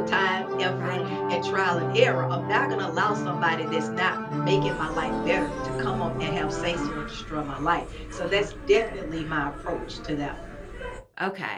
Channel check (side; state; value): both; identical; correlation 1.00